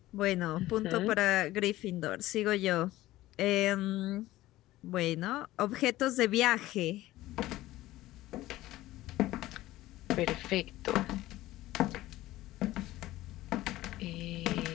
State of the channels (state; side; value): quieter; right; 16.4 dB